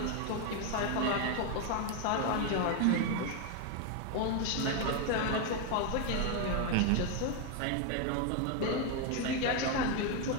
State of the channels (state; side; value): different; both; correlation 0.01